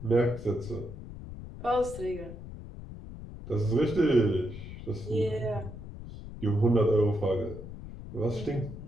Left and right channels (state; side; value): noise; left; rumble, 12 dB below the sound